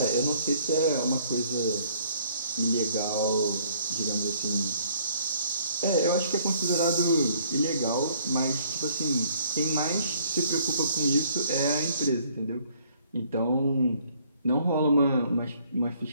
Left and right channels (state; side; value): inverted; both; correlation -0.62